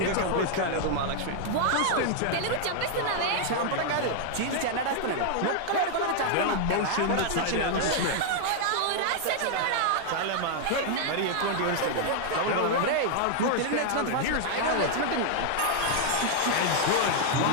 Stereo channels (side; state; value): both; different; correlation 0.00